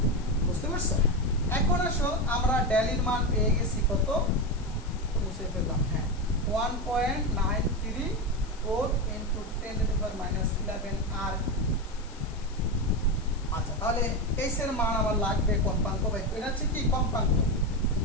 বুঝতে পারছো? এখন আসো আমরা ডেলির মান পেয়ে গেছি কত? মুছে ফেললাম। হ্যাঁ, 1.934 into 10 to the power minus 11 আর। আচ্ছা, তাহলে এস এর মান আমার লাগবে কম্পাঙ্ক বাই এটা হচ্ছে কি কম্পাঙ্ক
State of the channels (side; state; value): left; noise; hiss, 21 dB below the sound